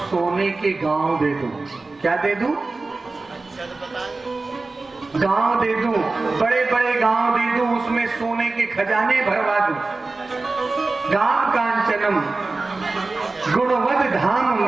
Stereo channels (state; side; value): quieter; left; 3.5 dB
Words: सोने के गांव दे दूं। क्या दे दूं? गांव दे दूं, बड़े बड़े गांव दे दूं, उसमें सोने के खजाने भरवा दूं। गाम कांचनम गुणवद धाम